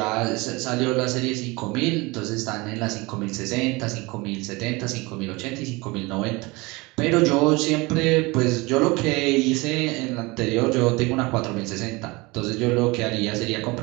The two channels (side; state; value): left; quieter; 24.2 dB